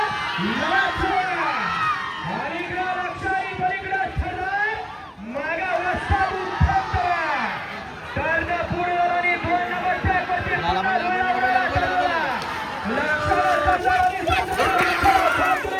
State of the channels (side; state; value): both; identical; correlation 1.00